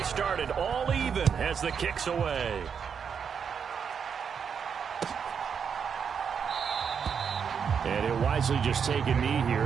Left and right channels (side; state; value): left; quieter; 6.9 dB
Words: started, all even as the kick's away. And he'll wisely just take a knee